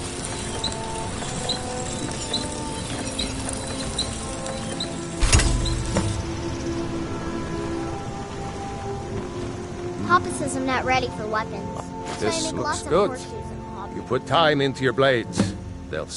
Papa says I'm not ready for weapons. So I This make looks lots of good. horseshoes and hobbies. You put time into your blades. They'll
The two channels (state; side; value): identical; both; correlation 1.00